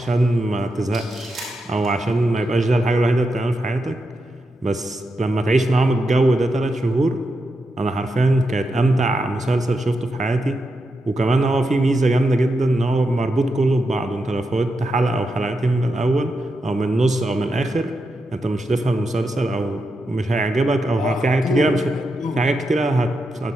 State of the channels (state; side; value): normal; both; correlation 0.86